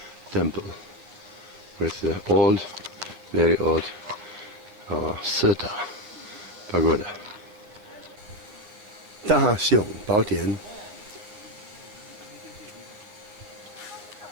temple with the old, very old Seta pagoda. Daxiong Padian.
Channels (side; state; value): left; late; 9.6 ms